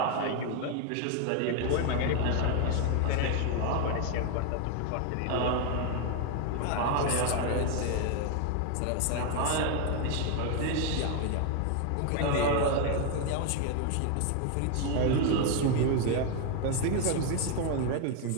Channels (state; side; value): different; both; correlation 0.01